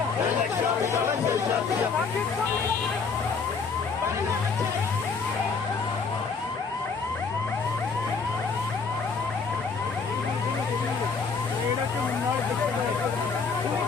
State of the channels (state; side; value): quieter; right; 5.1 dB